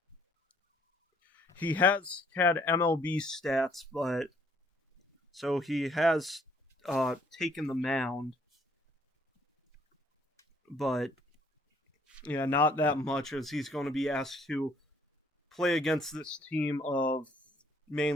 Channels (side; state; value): both; normal; correlation 0.63